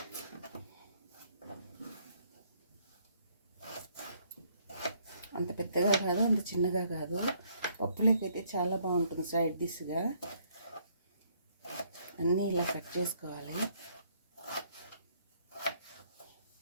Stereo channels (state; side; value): inverted; both; correlation -0.67